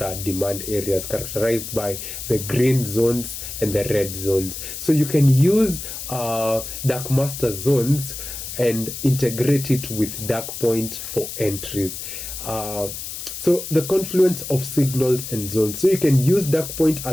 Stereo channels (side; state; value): left; noise; hiss, 8 dB below the sound